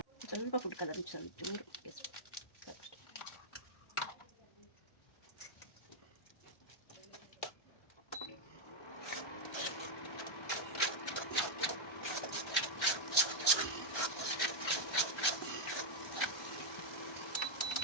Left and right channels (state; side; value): late; right; 1.3 ms